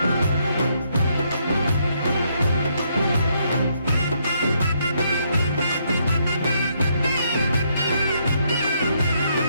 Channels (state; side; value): inverted; both; correlation -0.74